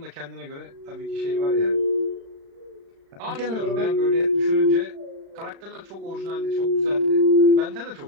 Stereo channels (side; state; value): left; late; 35 ms